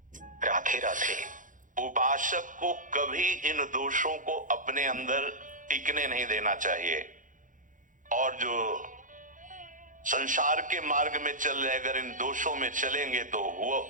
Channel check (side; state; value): left; late; 0.38 ms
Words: राधे राधे। उपासक को कभी इन दोषों को अपने अंदर टिकने नहीं देना चाहिए, और जो संसार के मार्ग में चल रहे अगर इन दोषों में चलेंगे तो वो